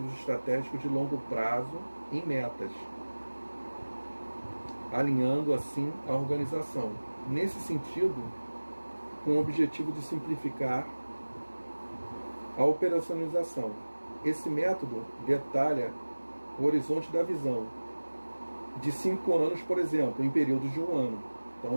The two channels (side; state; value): both; inverted; correlation -1.00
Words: estratégicos de longo prazo em metas, alinhando assim a organização. Nesse sentido, com o objetivo de simplificar a operacionalização. Esse método detalha o horizonte da visão de 5 anos, por exemplo, em períodos de 1 ano. Então